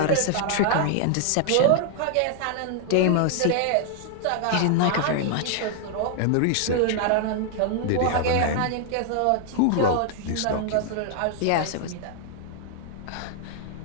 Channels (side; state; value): both; different; correlation 0.00